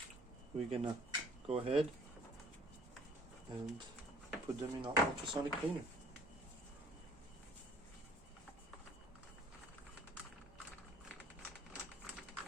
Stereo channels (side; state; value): both; normal; correlation 0.56